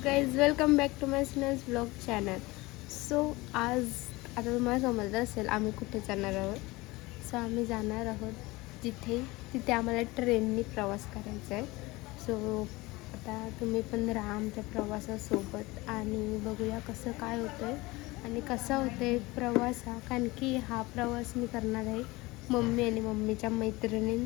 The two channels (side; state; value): right; quieter; 21.8 dB